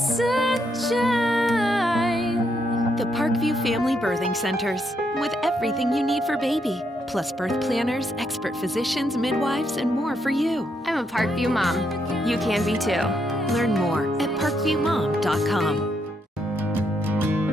The Parkview Family Birthing Centers, with everything you need for baby, plus birth planners, expert physicians, midwives, and more for you. I'm a Parkview mom. You can be too. Learn more at parkviewmom.com.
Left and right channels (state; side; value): normal; both; correlation 0.77